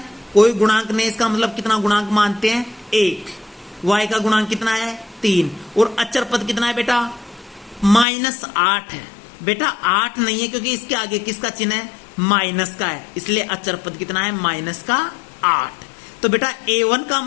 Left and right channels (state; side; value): drops out; right; at 8.1 s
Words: कोई गुणांक नहीं, इसका मतलब कितना गुणांक मानते हैं 1, y का गुणांक कितना है 3, और अचर पद कितना है बेटा -8 है। बेटा 8 नहीं है क्योंकि इसके आगे किसका चिन्ह है माइनस का है, इसलिए अचर पद कितना है -8। तो बेटा A1 का